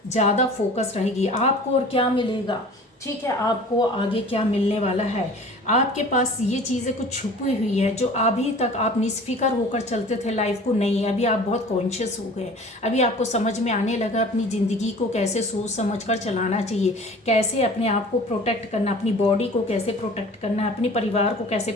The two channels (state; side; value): normal; both; correlation 0.44